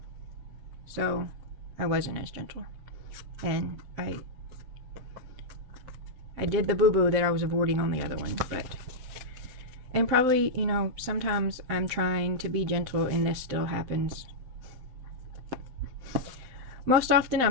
so I wasn't as gentle, and I did the boo-boo that I was avoiding on the other one, and probably, you know, sometimes I'm trying to be gentle and this still happens. Most often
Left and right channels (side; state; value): left; late; 7.7 ms